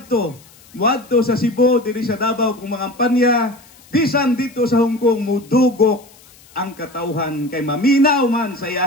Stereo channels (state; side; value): noise; left; hiss, 26 dB below the sound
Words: sa Cebu, diri sa Davao kung mangampanya, bisan dito sa Hong Kong mudugok ang katawhan kay maminaw man sa